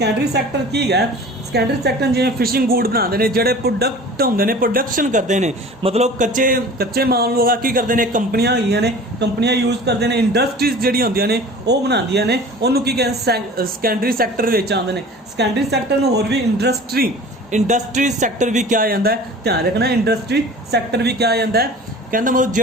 सैक्टर की है सैकेंडरी सैक्टर जिवें फिशिंग गुड बनाते हैं, जिहड़े प्रोडक्ट होंदे ने प्रोडक्शन करते हैं, मतलब कच्चे माल लोग की करते हैं कंपनियां होईयां ने, कंपनियां यूज करते हैं, इंडस्ट्रीज जिहड़ी होंदियां ने वो बनांदियां ने, उहनूं की कहंदे सैकेंडरी सैक्टर विच आंदे ने। सैकेंडरी सैक्टर नूं होर भी इंडस्ट्री सैक्टर भी क्या जाता है, ध्यान रखना इंडस्ट्री सैक्टर भी क्या जाता है। कहना मतलब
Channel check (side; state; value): both; normal; correlation 0.42